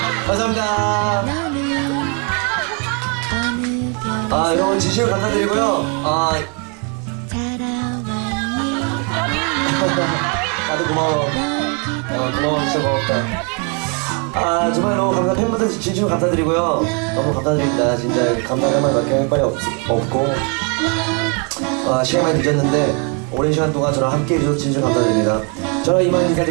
감사합니다. 여러분 진심으로 감사드리고요. 다들 고마워. 고마워, 진짜 고맙다. 정말로 팬분들 진심으로 감사드리고요. 너무 감사드립니다. 진짜 감사할 말밖에 할 말이 없고 시간이 많이 늦었는데 오랜 시간 동안 저랑 함께 해주셔서 진심으로 감사드립니다. 저는 이만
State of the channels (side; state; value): left; quieter; 36.7 dB